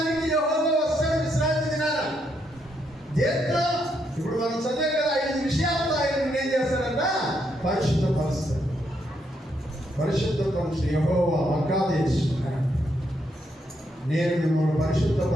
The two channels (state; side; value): normal; both; correlation 0.77